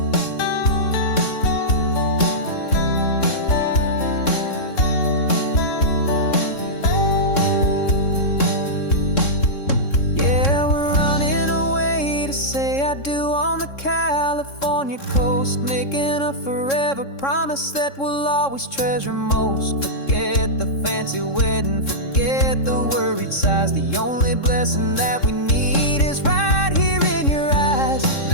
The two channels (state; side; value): late; right; 3.7 ms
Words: Yeah, we're running away to say I do on the California coast, making a forever promise that we'll always treasure most. Forget the fancy wedding, forget the worried sighs. The only blessing that we need is right here in your eyes.